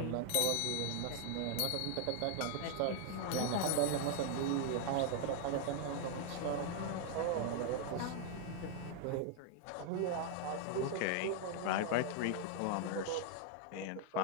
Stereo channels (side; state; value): both; different; correlation 0.00